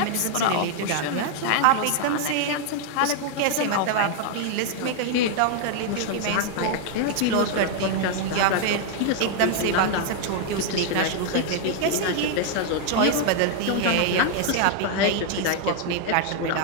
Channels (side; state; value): both; different; correlation 0.00